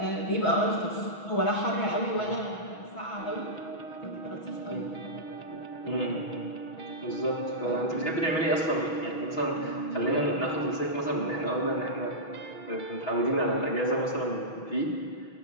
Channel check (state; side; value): late; right; 6.2 ms